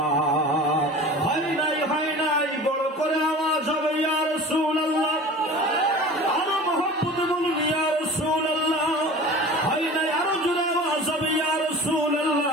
হয় নাই বড় করে আওয়াজ হবে ইয়া রাসূলুল্লাহ। আরো মহব্বতে বলুন ইয়া রাসূলুল্লাহ। হয় নাই আরো জোরে আওয়াজ হবে ইয়া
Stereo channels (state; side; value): normal; both; correlation 0.38